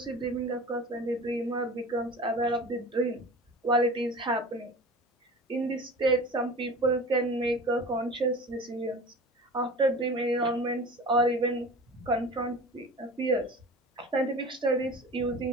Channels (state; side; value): normal; both; correlation 0.37